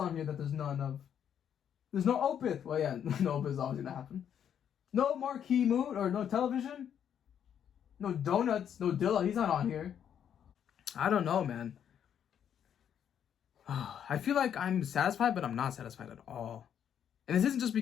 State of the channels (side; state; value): right; quieter; 8.9 dB